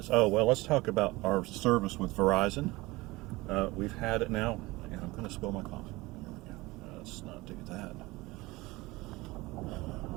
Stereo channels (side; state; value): left; quieter; 21.3 dB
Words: Oh, well, let's talk about our service with Verizon. We've had it now, and I'm going to spill my coffee. Here we go. Let's not do that.